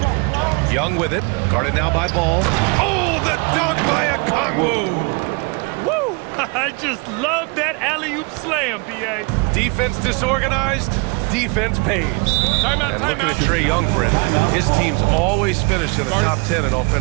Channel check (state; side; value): quieter; left; 30.8 dB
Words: Young with it. Guarded now by Ball. Oh, the dunk by a Kongwu. Woo! I just love that alley-oop slam, B.A. Defense disorganized. Defense pays. And looking at Trae Young, Brent, his teams always finish in the top 10 in